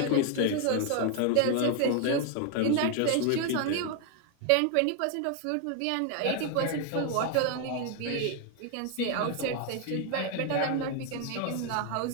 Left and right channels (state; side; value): different; both; correlation 0.00